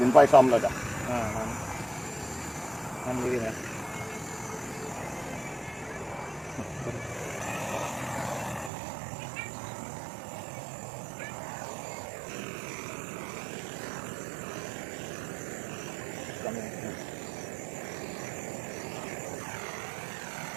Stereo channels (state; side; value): drops out; left; at 8.7 s